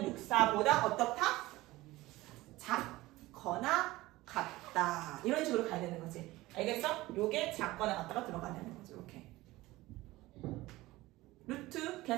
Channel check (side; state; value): left; quieter; 18.7 dB